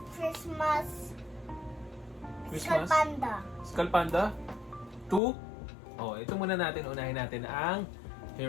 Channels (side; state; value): right; drops out; at 5.2 s